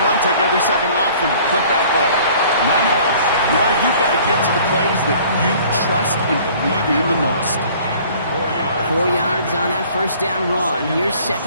take every second off and punt that ball. Now you've got to get to the plays that you trust and believe in the most. 4 yards on that 1st down run. Here's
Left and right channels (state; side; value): inverted; both; correlation -0.52